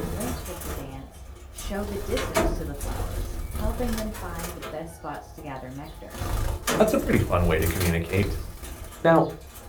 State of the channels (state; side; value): identical; both; correlation 1.00